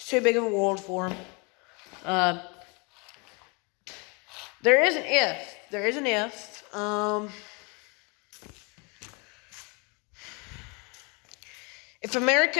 too big of a world for them. There is an if. There is an if. If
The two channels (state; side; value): quieter; right; 30.9 dB